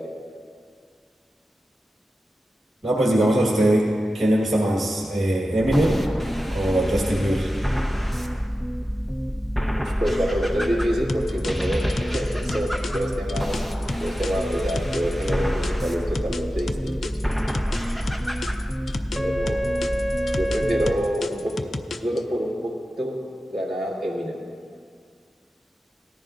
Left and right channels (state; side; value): normal; both; correlation 0.93